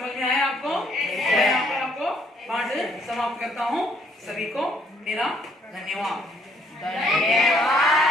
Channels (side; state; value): both; normal; correlation 0.66